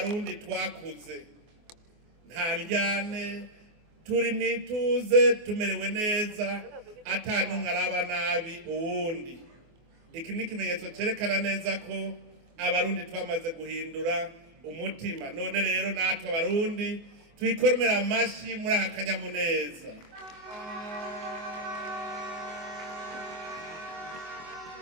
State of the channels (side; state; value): left; late; 24 ms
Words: twakuze, nta njyane, turi mwituze, tumerewe neza, atanumwe araba nabi uwundi. Iki ni ikimenyetso cerekana neza ko abarundi twamaze guhindura umutima. None rero natwe abarundi twikorera amashi muri aka kanyamuneza.